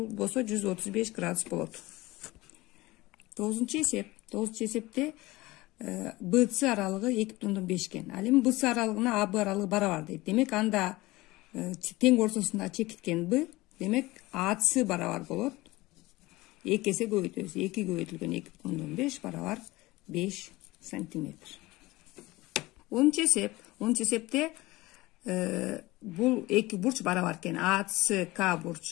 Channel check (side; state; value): right; quieter; 20.0 dB